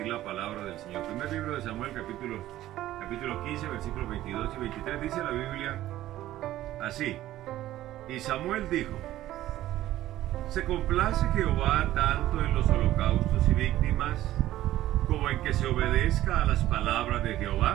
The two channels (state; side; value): quieter; left; 14.3 dB